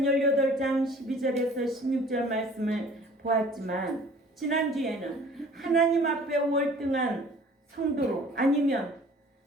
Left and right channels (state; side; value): normal; both; correlation 0.50